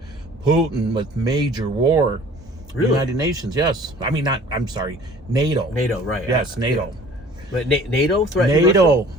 Putin with major war. Really? United Nations, yes. I mean, I'm sorry, NATO. NATO, right. Yes, NATO. But NATO threatened NATO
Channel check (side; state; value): both; normal; correlation 0.48